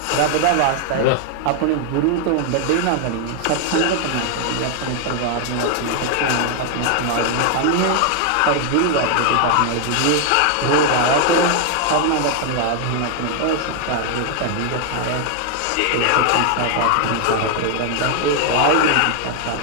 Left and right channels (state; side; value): different; both; correlation 0.00